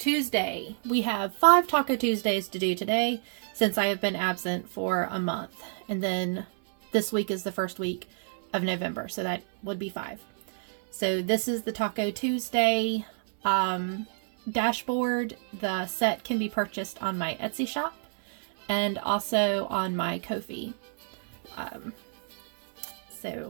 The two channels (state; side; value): silent; left; 59 dB below the other